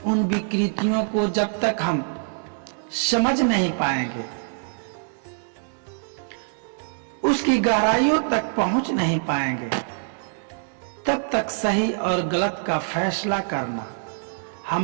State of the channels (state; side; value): silent; left; digital silence